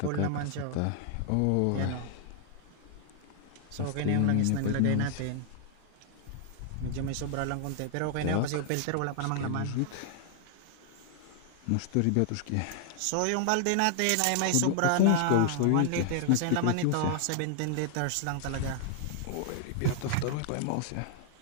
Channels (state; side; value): different; both; correlation 0.00